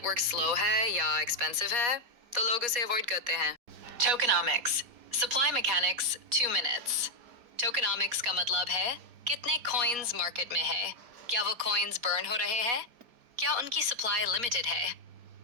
स्लो है या एक्सपेंसिव है तो लोग उसे अवॉइड करते हैं। टोकेनॉमिक्स, सप्लाई मैकेनिक्स, 2 मिनट्स। टोकेनॉमिक्स का मतलब है कितने कॉइन्स मार्केट में है, क्या वो कॉइन्स बर्न हो रहे हैं, क्या उनकी सप्लाई लिमिटेड है।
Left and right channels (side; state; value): left; late; 4.2 ms